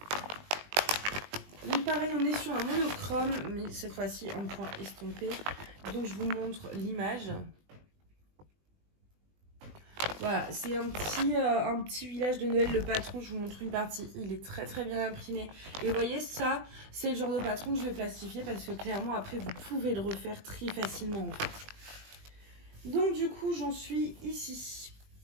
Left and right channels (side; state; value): left; late; 20 ms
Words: Donc pareil, on est sur un monochrome, mais cette fois-ci en point estompé. Donc je vous montre l'image. Voilà, c'est un petit village de Noël, le patron, je vous montre une partie, il est très très bien imprimé. Et vous voyez, ça, c'est le genre de patron que je vais plastifier parce que clairement, après, vous pouvez le refaire très facilement en fait. Donc du coup, j'en suis ici.